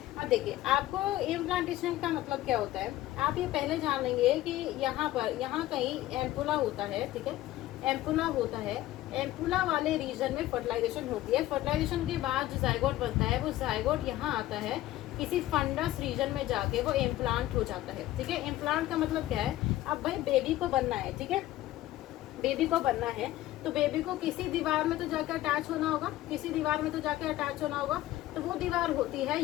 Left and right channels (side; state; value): right; quieter; 15.2 dB